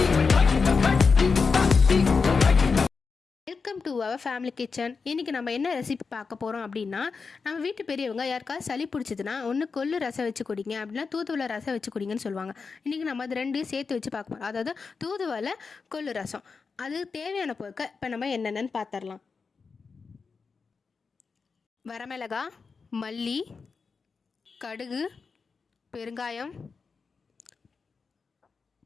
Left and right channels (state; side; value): quieter; right; 4.9 dB